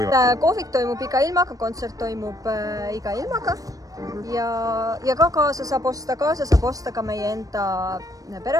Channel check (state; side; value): late; left; 0.17 ms